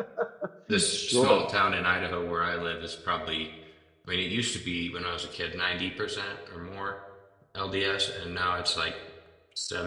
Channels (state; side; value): identical; both; correlation 1.00